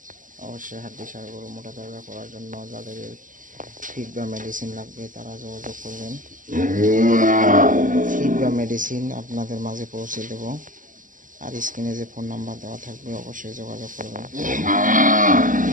অবশ্যই হাড্ডি সার গরু মোটা তাজা করার জন্য যাদের ফিড বা মেডিসিন লাগবে তারা যোগাযোগ করবেন। ফিড বা মেডিসিন আপনাদের মাঝে পৌঁছে দেব। আর স্ক্রিনে যে ফোন নাম্বার দেওয়া থাকবে অবশ্যই যোগাযোগ করবেন।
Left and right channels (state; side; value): late; left; 0.38 ms